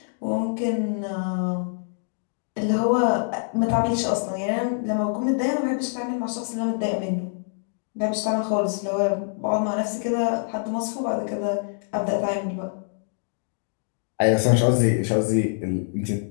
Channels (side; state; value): right; silent; digital silence